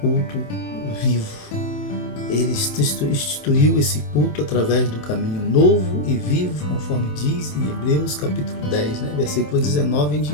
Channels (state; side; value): late; right; 28 ms